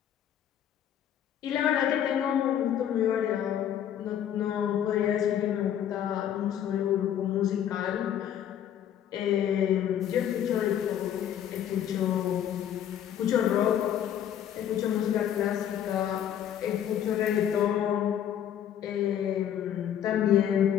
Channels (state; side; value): quieter; right; 10.0 dB